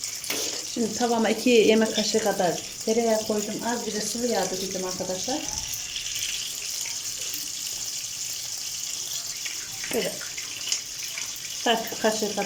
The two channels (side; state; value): both; identical; correlation 1.00